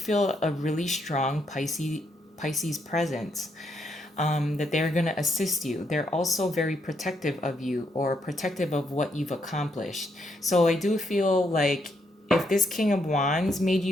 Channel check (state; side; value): normal; both; correlation 0.76